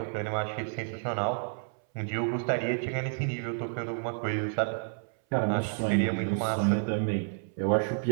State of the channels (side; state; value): left; silent; 58 dB below the other